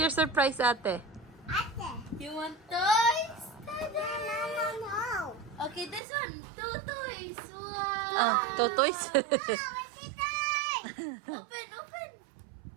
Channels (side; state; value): left; drops out; at 6.0 s